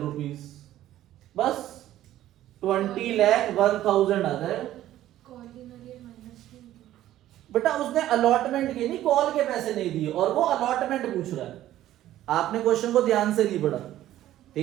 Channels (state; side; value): quieter; left; 13.4 dB